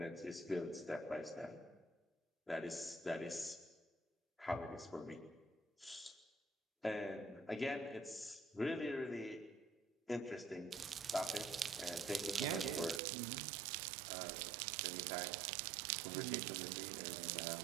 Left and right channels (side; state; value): left; drops out; at 13.0 s